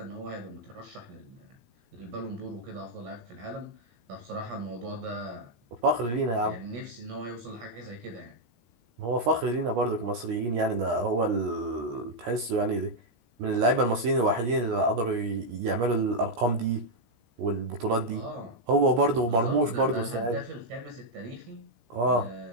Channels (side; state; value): left; late; 17 ms